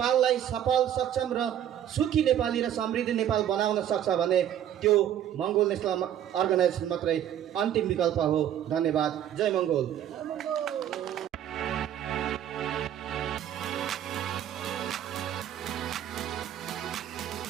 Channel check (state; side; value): quieter; left; 10.6 dB